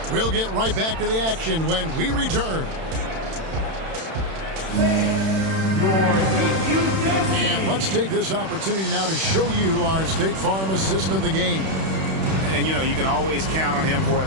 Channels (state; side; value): late; left; 31 ms